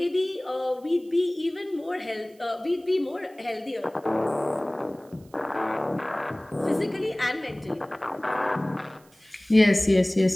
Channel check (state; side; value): noise; right; hiss, 30 dB below the sound